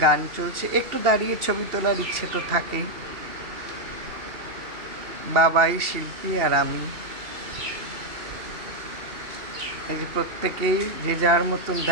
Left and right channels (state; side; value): late; left; 2.7 ms